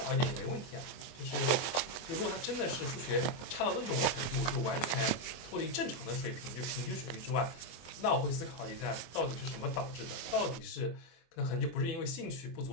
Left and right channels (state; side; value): late; right; 23 ms